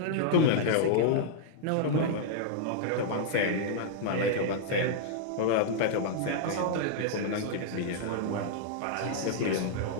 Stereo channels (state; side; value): different; both; correlation -0.01